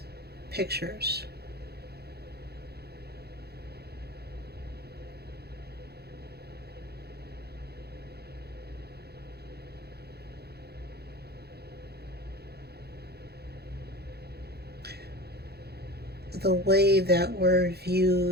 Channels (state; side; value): late; left; 0.47 ms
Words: pictures. The way that we're